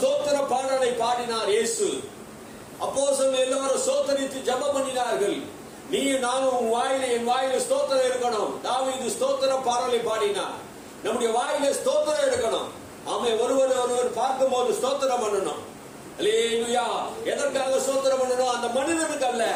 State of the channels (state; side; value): identical; both; correlation 1.00